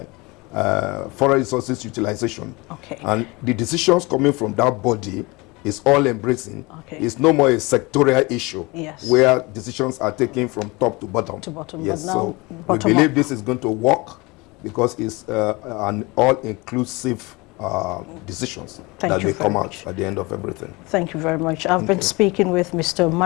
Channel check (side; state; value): right; quieter; 24.6 dB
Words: forest resources utilization. Okay. And the decisions coming from that body is all embracing. Okay. It's no more a sectorial issue, yes, where decisions are taken from top to bottom. Yes, but now so we bottom believe up. this is going to work, because it's an all-inclusive decisions Thank that you will very come out much. at the end of everything. Thank you very much. I've been speaking with Mr.